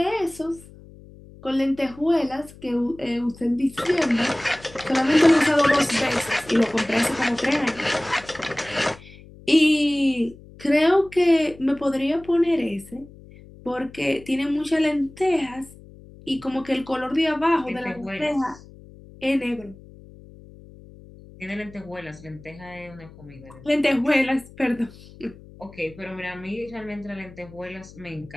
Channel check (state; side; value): noise; left; hum, 20 dB below the sound